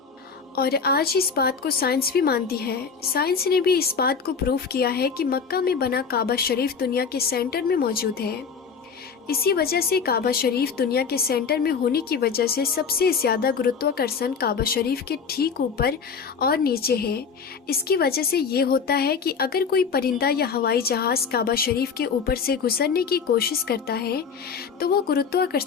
और आज इस बात को साइंस भी मानती है। साइंस ने भी इस बात को प्रूफ किया है कि मक्का में बना काबा शरीफ दुनिया के सेंटर में मौजूद है। इसी वजह से काबा शरीफ दुनिया के सेंटर में होने की वजह से सबसे ज़्यादा गुरुत्वाकर्षण काबा शरीफ के ठीक ऊपर और नीचे है। इसकी वजह से ये होता है कि अगर कोई परिंदा या हवाई जहाज़ काबा शरीफ के ऊपर से गुजरने की कोशिश करता है तो वो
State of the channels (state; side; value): quieter; right; 5.9 dB